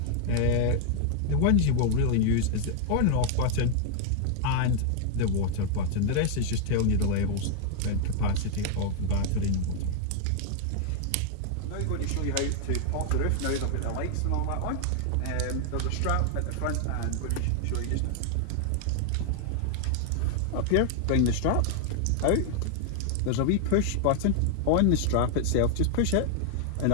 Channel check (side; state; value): both; different; correlation 0.00